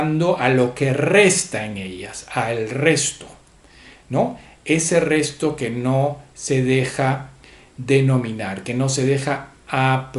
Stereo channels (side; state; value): both; identical; correlation 1.00